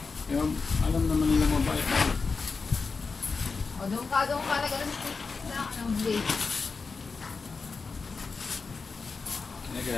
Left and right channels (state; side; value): quieter; right; 4.6 dB